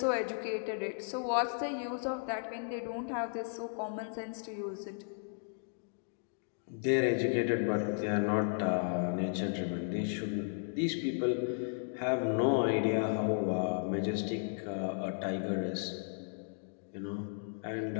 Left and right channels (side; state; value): right; silent; digital silence